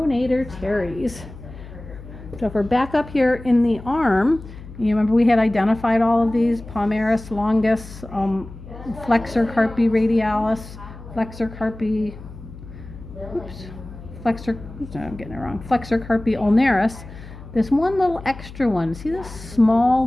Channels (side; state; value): left; noise; hum, 15 dB below the sound